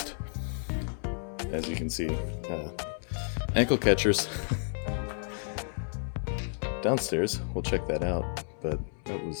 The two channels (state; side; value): silent; right; 57 dB below the other